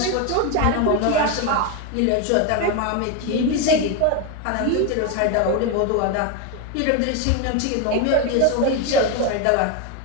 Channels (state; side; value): different; both; correlation 0.02